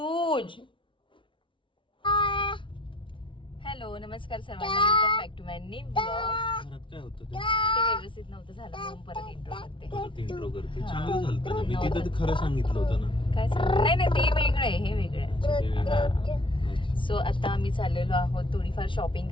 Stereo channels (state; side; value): late; right; 0.25 ms